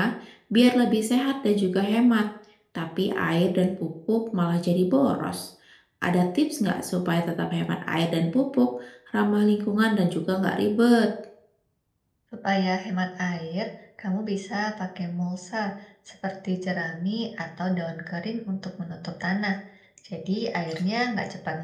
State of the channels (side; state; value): both; identical; correlation 1.00